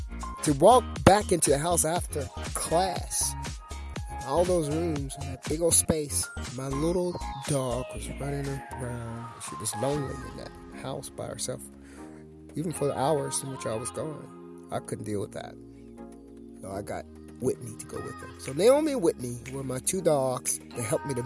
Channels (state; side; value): identical; both; correlation 1.00